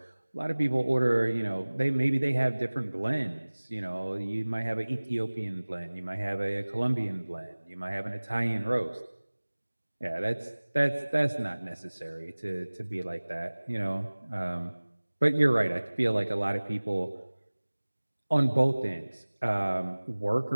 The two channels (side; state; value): both; inverted; correlation -1.00